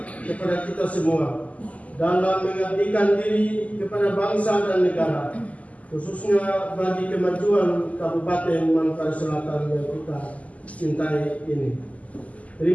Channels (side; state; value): right; late; 0.070 ms